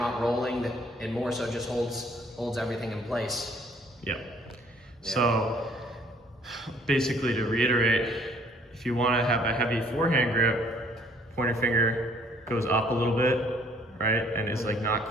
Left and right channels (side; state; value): both; normal; correlation 0.59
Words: rolling, and more so just holds everything in place. Yeah. So basically to reiterate, if you want to have a heavy forehand grip, pointer finger goes up a little bit, right? And is like not